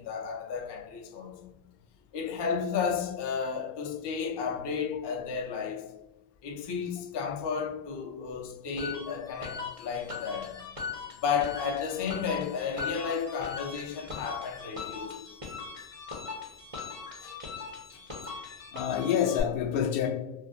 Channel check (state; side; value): quieter; right; 6.4 dB